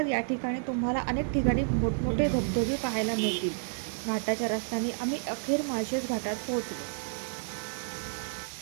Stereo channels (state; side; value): silent; left; digital silence